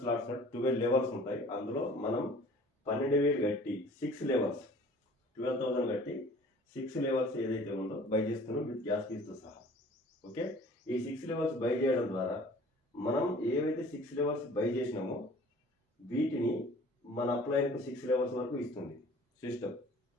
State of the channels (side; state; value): both; normal; correlation 0.49